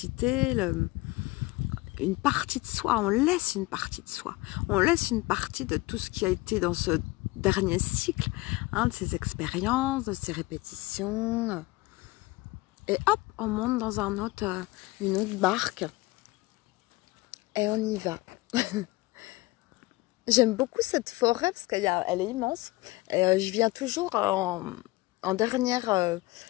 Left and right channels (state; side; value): quieter; right; 21.3 dB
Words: une partie de soi. On laisse une partie de soi. On laisse une partie de tout ce qui a été dans ce dernier cycle, hein, de ces expériences, de ces répétitions. Et hop, on monte dans une autre barque. Et on y va. J'aime beaucoup cette forêt parce qu'elle est immense. Et, je viens toujours en dernière...